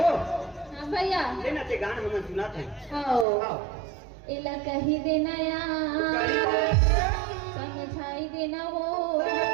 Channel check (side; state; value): left; drops out; at 3.2 s